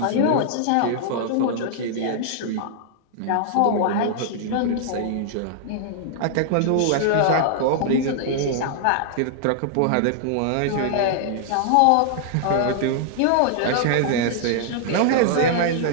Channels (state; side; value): different; both; correlation -0.01